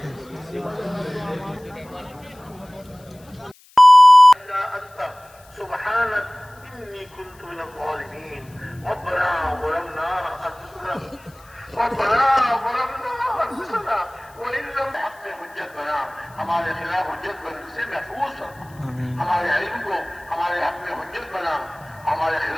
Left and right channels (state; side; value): noise; left; hiss, 27 dB below the sound